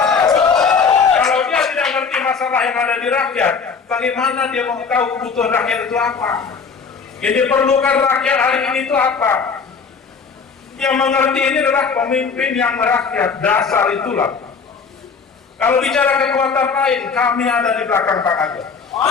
Kalau dia tidak ngerti masalah yang ada di rakyat, bagaimana dia mau tahu kebutuhan rakyat itu apa? Yang diperlukan rakyat hari ini itu apa? Yang mengerti ini adalah pemimpin yang merakyat, dasar itulah. Kalau bicara kekuatan lain, kami ada di belakang Pak Kanjeng.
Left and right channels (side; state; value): right; quieter; 5.5 dB